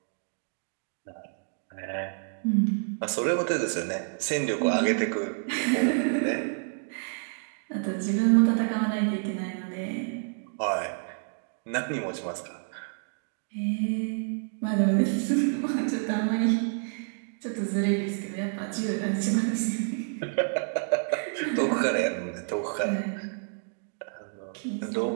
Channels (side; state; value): left; silent; digital silence